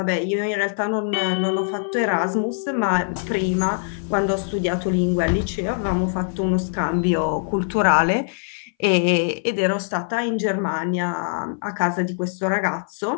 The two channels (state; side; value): silent; right; 61 dB below the other